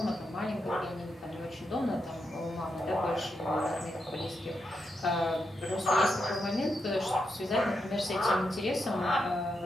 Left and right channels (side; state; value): both; normal; correlation 0.84